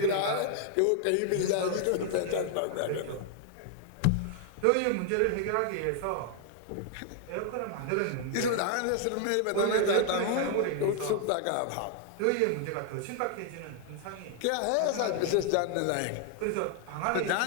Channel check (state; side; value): different; both; correlation 0.00